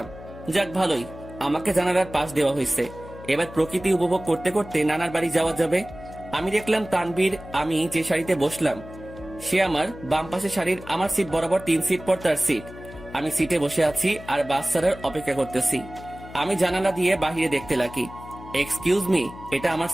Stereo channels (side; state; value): left; noise; hum, 16 dB below the sound